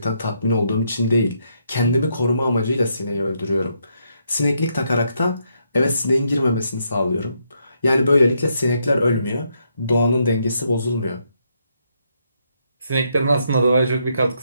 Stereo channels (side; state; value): both; inverted; correlation -0.77